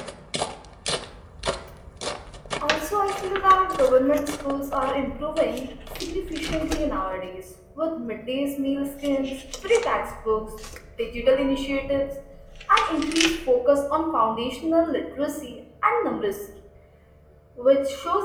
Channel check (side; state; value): both; identical; correlation 1.00